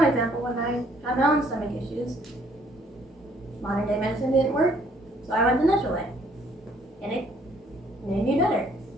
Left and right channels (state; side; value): normal; both; correlation 0.64